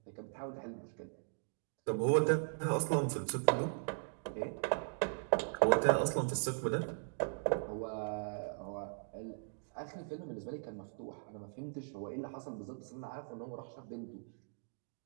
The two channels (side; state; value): left; silent; digital silence